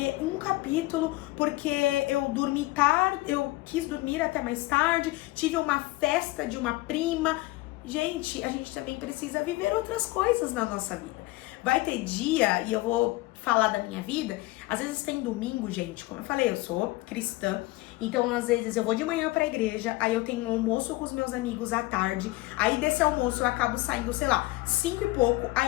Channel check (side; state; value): right; quieter; 20.5 dB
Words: um capítulo porque eu dormi tarde, eu quis dormir até mais tarde, tive uma festa de uma prima. Gente, a gente também precisa viver outras coisas na nossa vida. Vai ter dia, e eu vou falar da minha vida, às vezes tem domingo, gente, como eu falei, eu sou cristã, então às vezes eu vou de manhã pra igreja, aí eu tenho um almoço com os meus amigos à tarde, aí desse almoço eu acabo saindo, sei lá, 5 e pouco,